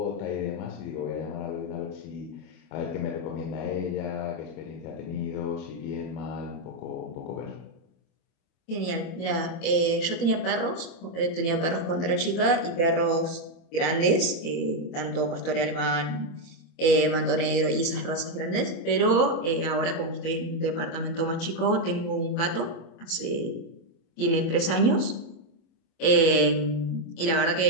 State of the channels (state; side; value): late; right; 24 ms